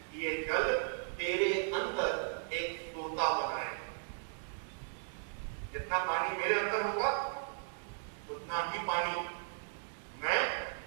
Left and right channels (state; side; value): silent; left; digital silence